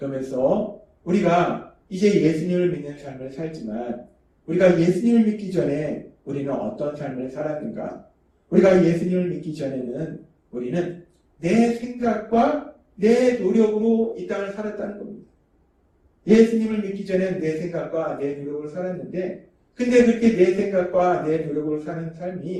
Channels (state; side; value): identical; both; correlation 1.00